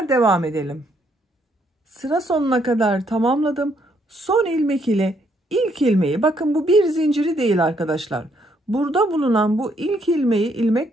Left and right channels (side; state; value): both; normal; correlation 0.71